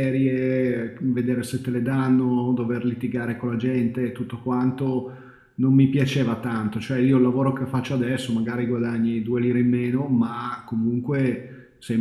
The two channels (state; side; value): identical; both; correlation 1.00